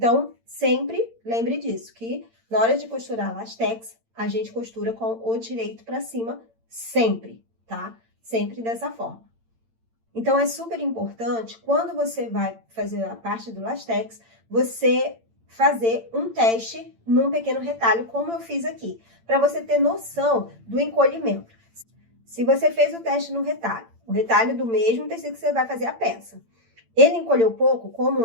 sempre lembre disso, que na hora de costurar lastex, a gente costura com o direito para cima, sempre, tá? Sempre dessa forma. Então, é super importante, quando você vai fazer a parte do lastex, você fazer um teste num pequeno retalho, como eu fiz aqui, para você ter noção do encolhimento. Se você fez o teste no retalho, o retalho do mesmo tecido que você vai fazer a peça, ele encolheu pouco,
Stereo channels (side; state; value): left; late; 8.8 ms